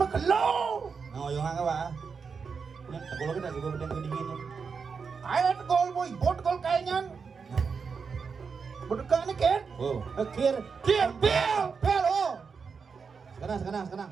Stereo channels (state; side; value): quieter; left; 5.5 dB